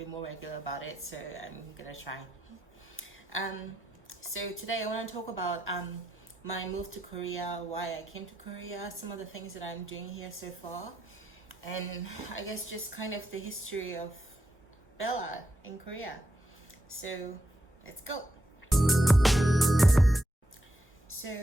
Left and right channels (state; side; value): normal; both; correlation 0.83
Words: more regular about it, so I'm gonna try. Um, so today I want to talk about my move to Korea, why I came to Korea, some of the things that I'm doing here so far, and I guess just kind of the history of Bella in Korea. So let's go. So